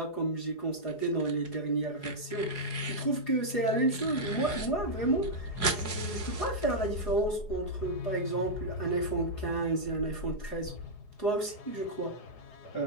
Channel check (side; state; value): right; late; 4.8 ms